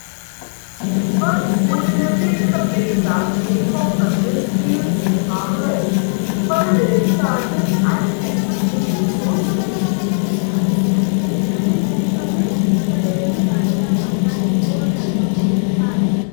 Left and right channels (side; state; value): right; silent; digital silence